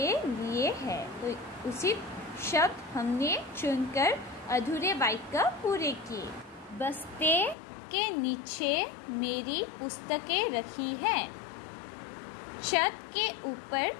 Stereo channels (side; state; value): right; drops out; at 7.6 s